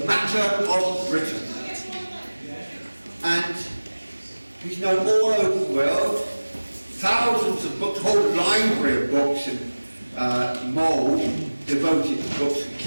matter of Britain. And he's known all over the world, thousands of books, whole library of books and more devoted to books of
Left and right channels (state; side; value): inverted; both; correlation -1.00